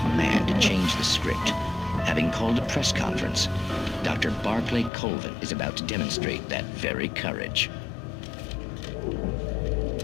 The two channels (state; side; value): drops out; right; at 4.9 s